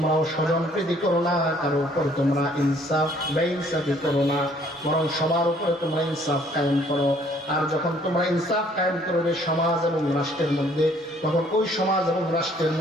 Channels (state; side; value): normal; both; correlation 0.61